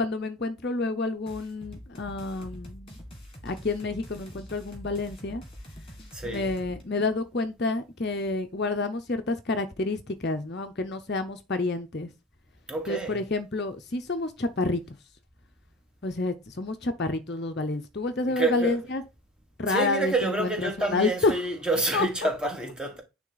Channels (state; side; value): normal; both; correlation 0.34